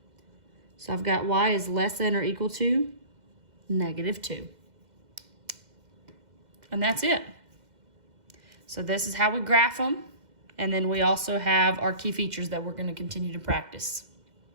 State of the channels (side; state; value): left; late; 2.0 ms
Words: So I've got y is less than or equal to -2. And that's it. So this is how we graph them. And then we also have our key features that we're going to continue to practice.